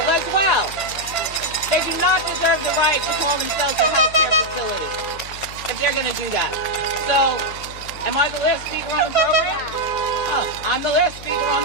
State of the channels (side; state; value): left; noise; hum, 15 dB below the sound